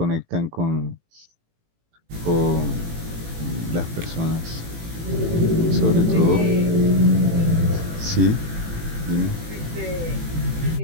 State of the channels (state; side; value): late; left; 18 ms